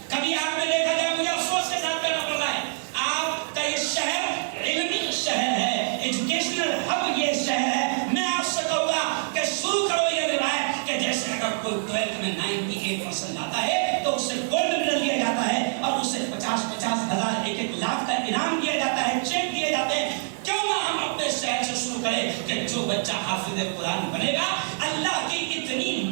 کبھی آپ نے دیکھا جائے، مجھے افسوس کے ساتھ کہنا پڑ رہا ہے، آپ کا یہ شہر علمی شہر ہے، ایجوکیشنل ہب یہ شہر ہے. میں آپ سے کہوں گا کہ شروع کرو یہ روایت کہ جیسے اگر کوئی 12th میں 98% لاتا ہے تو اسے گولڈ میڈل دیا جاتا ہے اور اسے 50,000 1,00,000 کا انعام دیا جاتا ہے، چیک دیے جاتے ہیں. کیوں نہ ہم اپنے شہر سے شروع کرے کہ جو بچہ حافظ قرآن بنے گا اللہ کی اتنی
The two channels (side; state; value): left; silent; digital silence